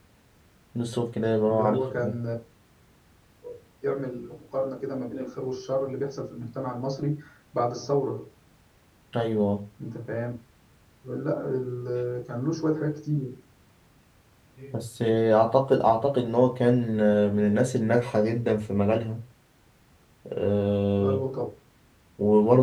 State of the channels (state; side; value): identical; both; correlation 1.00